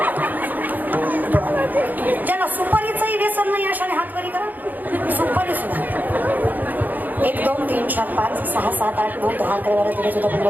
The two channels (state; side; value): late; left; 0.084 ms